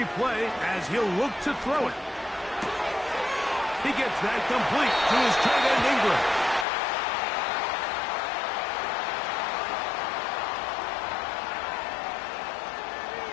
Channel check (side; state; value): right; drops out; at 6.7 s